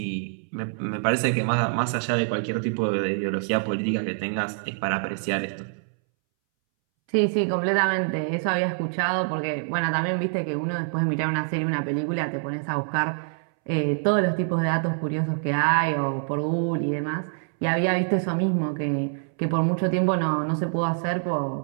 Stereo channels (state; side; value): silent; left; 61 dB below the other